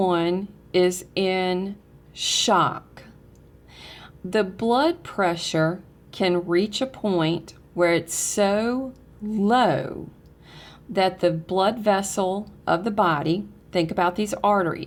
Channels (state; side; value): identical; both; correlation 1.00